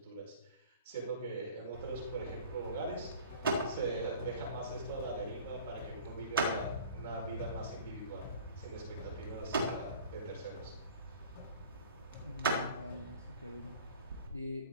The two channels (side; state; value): both; inverted; correlation -0.45